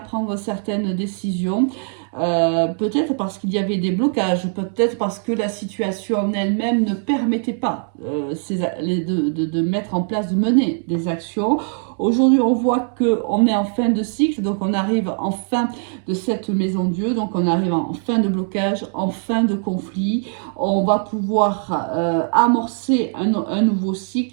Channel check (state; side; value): silent; left; 56 dB below the other